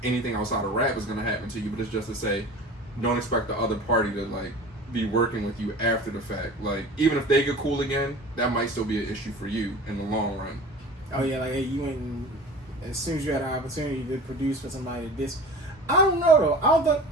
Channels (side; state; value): both; normal; correlation 0.39